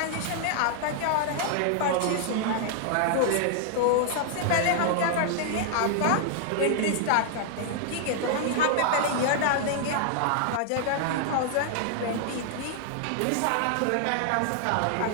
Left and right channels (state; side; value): different; both; correlation -0.01